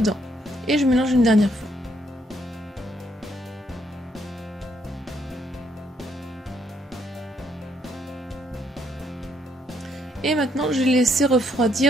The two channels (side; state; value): both; normal; correlation 0.72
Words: Et je mélange une dernière fois. Et maintenant, je vais laisser